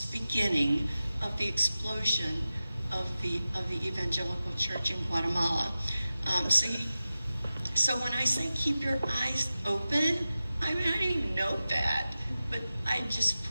the beginning of the explosion of the evangelical church in Guatemala. So when I say keep your eyes open, I didn't even know that. But I just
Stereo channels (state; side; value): inverted; both; correlation -0.95